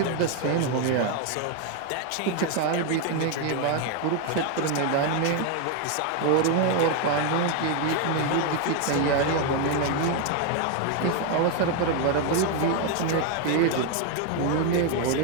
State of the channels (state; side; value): different; both; correlation 0.01